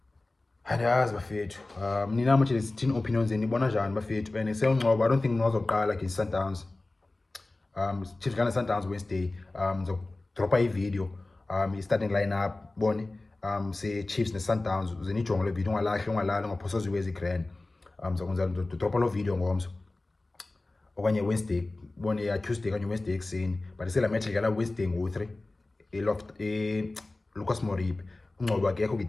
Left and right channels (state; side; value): quieter; right; 3.0 dB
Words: andiyazi bafethu nina manje lezithini opinions nibona njani bafethu and seUngcobo I don't think nozoqala ke Sundowns Chiefs gonna Sundowns Wednesday dropa i-video i-starting lineup bone se Chiefs ne Sundowns uzenijonga le video ungalali ngaphosa ziwezi grand ngizokwenza dropa lo video ngomso okanye Wednesday bone ya Tuesday kanye Wednesday ekseni but isela match igala Wednesday ngo3 eloft Lucas Moripe Ngcobo akekho ke